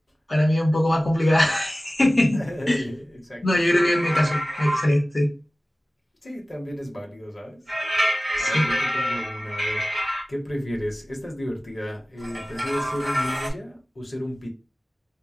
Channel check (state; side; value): normal; both; correlation 0.97